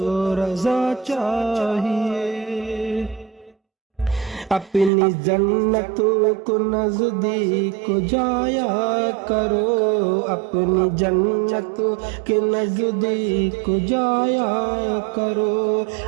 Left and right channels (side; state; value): left; drops out; at 4.9 s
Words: رضا چاہیے۔ اپنی جنت کو نزدیک جایا کرو، اپنی جنت کے نزدیک جایا کرو،